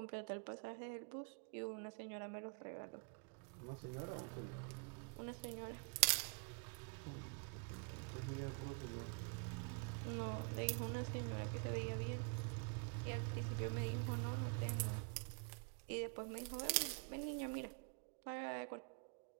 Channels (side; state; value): left; quieter; 37.5 dB